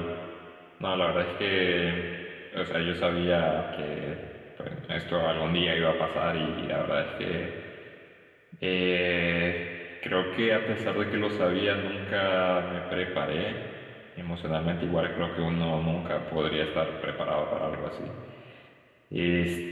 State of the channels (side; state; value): both; identical; correlation 1.00